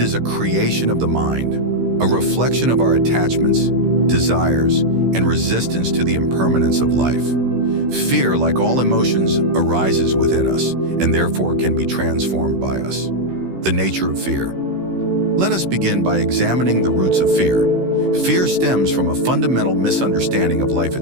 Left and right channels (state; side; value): late; left; 16 ms